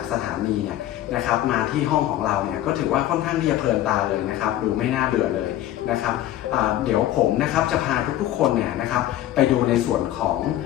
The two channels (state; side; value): quieter; right; 13.3 dB